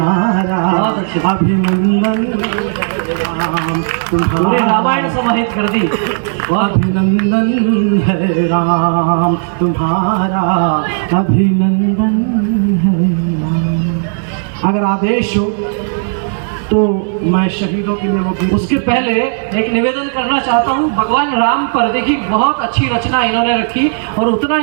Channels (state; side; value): silent; left; digital silence